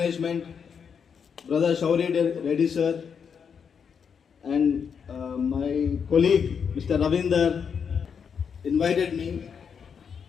Brother Shauri Reddy sir, and my colleague Mr. Ravinder invited me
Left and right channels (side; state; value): right; quieter; 6.8 dB